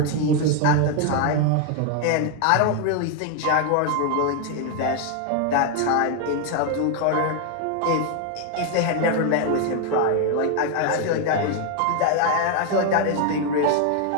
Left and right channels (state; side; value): different; both; correlation 0.01